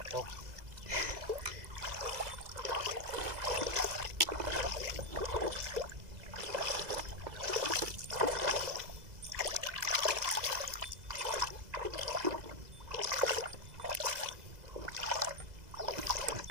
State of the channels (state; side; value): late; left; 2.0 ms